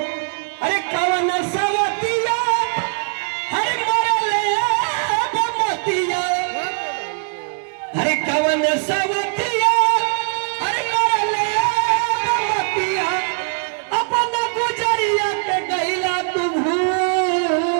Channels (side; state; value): left; silent; 66 dB below the other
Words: अरे कवन सवतिया हरे मरले बमतिया। अरे कवन सवतिया हरे मरले बमतिया। अपन गुजरिया के गईला तू